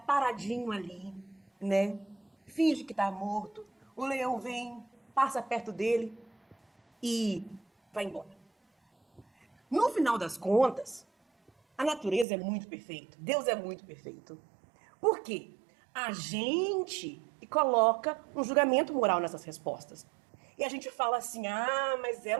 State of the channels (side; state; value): left; drops out; at 12.2 s